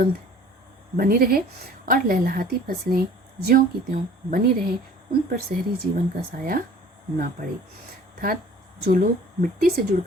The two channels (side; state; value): both; normal; correlation 0.49